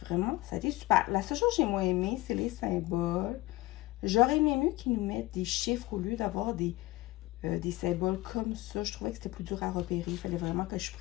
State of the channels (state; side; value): quieter; right; 19.0 dB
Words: vraiment, ça a été super. La seule chose que j'ai moins aimé, c'est les symboles. J'aurais aimé mieux qu'ils nous mettent des chiffres au lieu d'avoir des symboles comme ça. Je trouvais que c'était plus dur à repérer. Il fallait vraiment que je